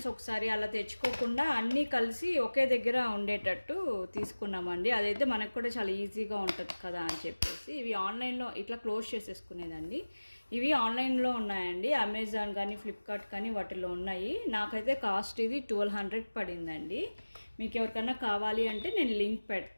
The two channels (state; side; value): inverted; both; correlation -1.00